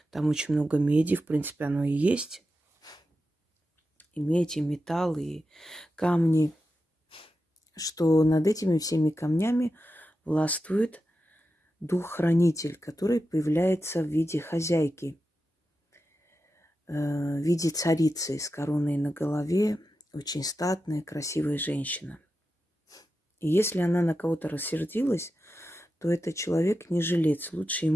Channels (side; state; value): both; normal; correlation 0.90